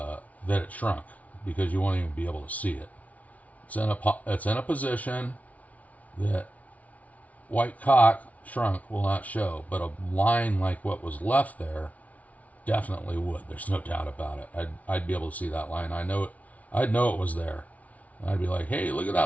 it shrunk because you won't even be able to see it. It's in a position that white caulk shrunk will not show, but a line like what was left there definitely would. There's no doubt about it. I'd be able to see that line. I'd know it was there. And I'd be like, hey, look at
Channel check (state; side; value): late; right; 0.069 ms